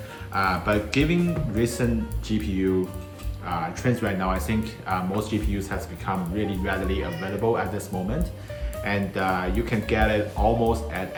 But given recent GPU trends right now, I think most GPUs has become really readily available at this moment. And you can get it almost at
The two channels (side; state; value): both; identical; correlation 1.00